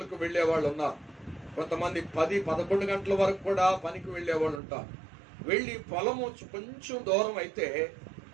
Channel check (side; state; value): left; drops out; at 4.6 s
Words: వెళ్లే వాళ్ళు ఉన్నారు, కొంతమంది 10-11 గంటల వరకు కూడా పనికి వెళ్లే వాళ్ళు ఉంటారు. వెళ్ళి పొలము కొంచెం దూరం అయితే